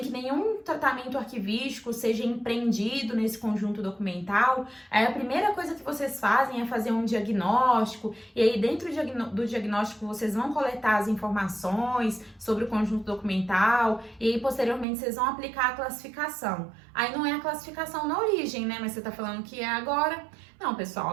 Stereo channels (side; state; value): left; drops out; at 14.9 s